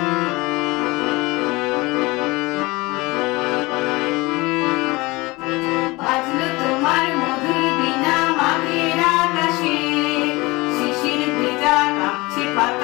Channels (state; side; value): quieter; right; 22.7 dB